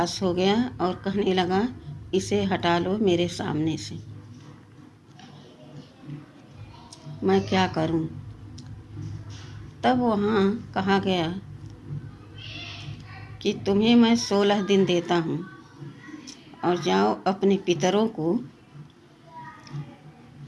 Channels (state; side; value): identical; both; correlation 1.00